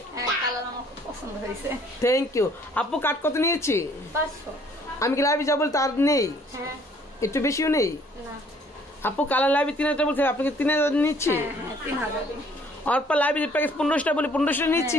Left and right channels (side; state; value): both; normal; correlation 0.60